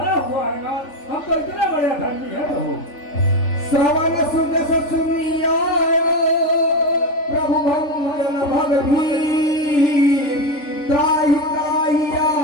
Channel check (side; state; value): right; late; 3.4 ms